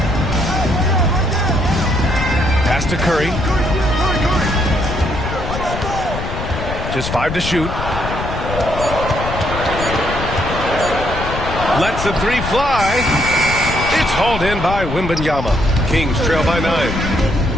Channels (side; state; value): left; noise; rumble, 6 dB below the sound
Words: Pass to Curry. Just 5 to shoot. Lets the 3 fly. It's hauled in by Wembanyama. Kings trail by 9.